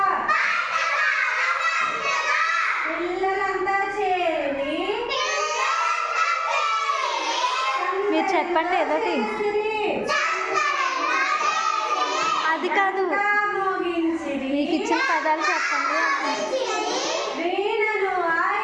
పిల్లలంతా చేరి మీరు చెప్పండి ఏదోటి. అది కాదు, మీకు ఇచ్చిన పదాలు చెప్పండి.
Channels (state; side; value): identical; both; correlation 1.00